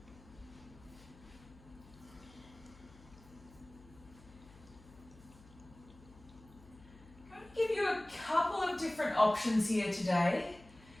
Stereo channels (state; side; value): noise; left; hum, 22 dB below the sound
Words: Different options here today.